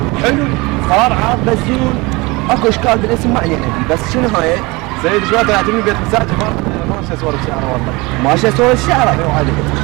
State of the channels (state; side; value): quieter; left; 24.3 dB